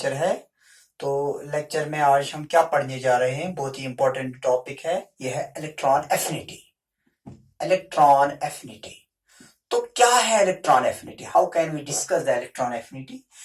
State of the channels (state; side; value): identical; both; correlation 1.00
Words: है। तो लेक्चर में आज हम क्या पढ़ने जा रहे हैं, बहुत ही इंपॉर्टेंट टॉपिक है। यह है इलेक्ट्रॉन एफिनिटी। इलेक्ट्रॉन एफिनिटी तो क्या है electron affinity? How can we discuss the electron affinity?